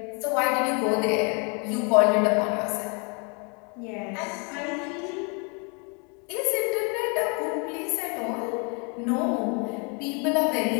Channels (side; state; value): right; quieter; 34.8 dB